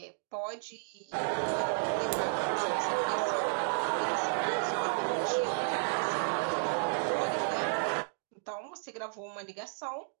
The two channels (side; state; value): left; silent; digital silence